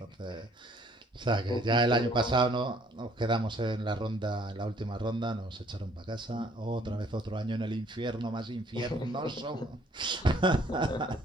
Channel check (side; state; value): both; normal; correlation 0.61